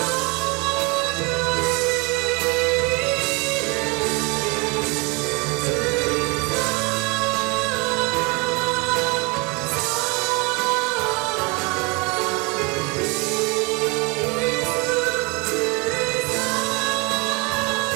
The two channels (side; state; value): left; quieter; 28.5 dB